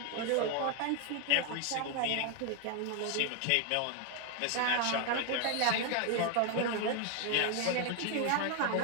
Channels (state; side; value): different; both; correlation 0.01